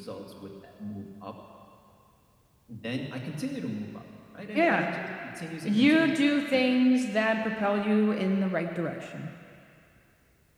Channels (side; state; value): both; identical; correlation 1.00